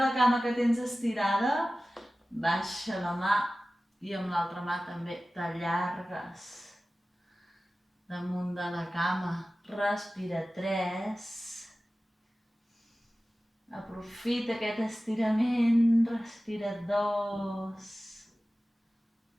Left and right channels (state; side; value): normal; both; correlation 0.96